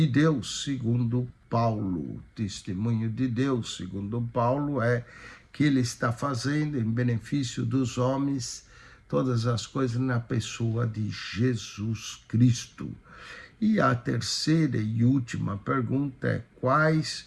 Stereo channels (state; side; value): identical; both; correlation 1.00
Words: Deus segundo Paulo? O testemunho de Deus segundo Paulo é que ele está fazendo em benefício dos homens todas as coisas na pessoa de Jesus Cristo. E a terceira e última pergunta é: